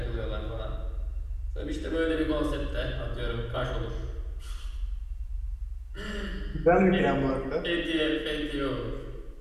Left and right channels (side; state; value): both; identical; correlation 1.00